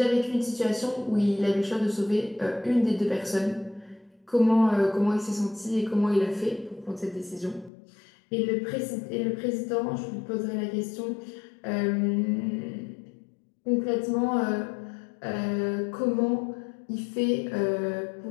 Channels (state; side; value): drops out; right; at 7.7 s